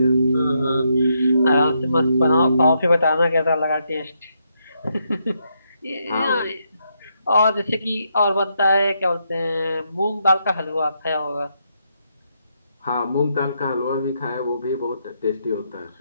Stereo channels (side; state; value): both; inverted; correlation -0.79